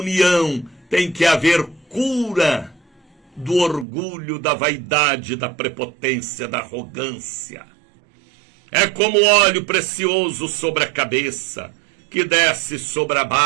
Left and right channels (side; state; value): left; drops out; at 3.9 s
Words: tem que haver cura do orgulho, da vaidade, da prepotência, da arrogância. É como óleo precioso sobre a cabeça, que desce sobre a